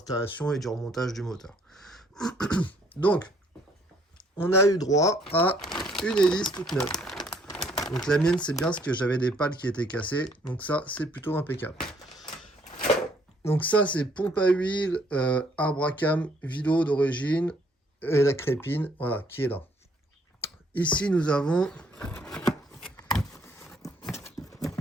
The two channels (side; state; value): both; normal; correlation 0.65